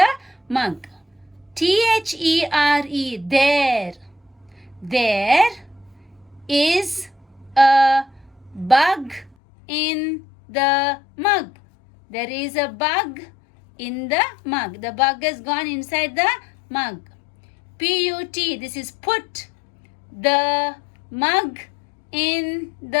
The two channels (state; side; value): drops out; right; at 9.3 s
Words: mug. There. There is a bug in the mug. There is a bug in the mug. The bug has gone inside the mug. Put, this is put the mug in